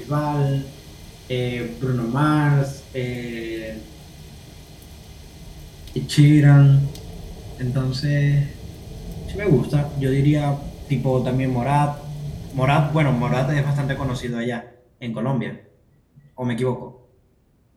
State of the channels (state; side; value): identical; both; correlation 1.00